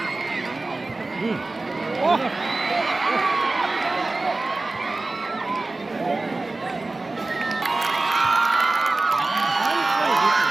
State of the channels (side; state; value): left; quieter; 3.2 dB